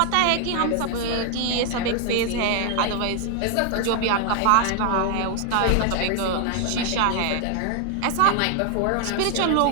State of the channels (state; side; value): different; both; correlation 0.00